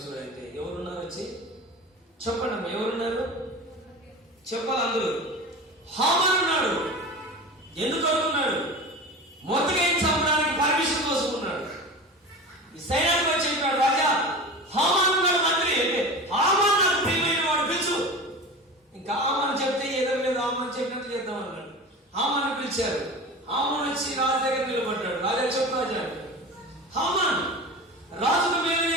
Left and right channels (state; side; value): normal; both; correlation 0.32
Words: చూడండి. ఎవరున్నారు? వచ్చి చెప్పండి, ఎవరున్నారు? చెప్పాలి అందరూ. హామాను ఉన్నాడు. ఎందుకు అనుకున్నాడు? మొర్దెకైని చంపడానికి పర్మిషన్ కోసుకున్నాడు. ఈ సైన్యాధిపతి చెప్పాడు, రాజా హామాను ఉన్నాడు మంత్రి అంటే. హామాను నాకు ప్రియమైన వాడు, పిలుచు. ఇంకా హామాను చెప్తే ఎదురు మీద హామాను చెప్పినట్టు చేద్దాం అన్నాడు. హామాను పిలిచారు. హామాను వచ్చి రాజు దగ్గర నిలబడ్డాడు. రాజా చెప్పు రాజా అంటే. హామాను రాజుకు మేలు